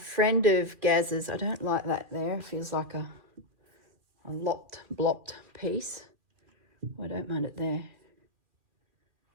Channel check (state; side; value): late; left; 2.4 ms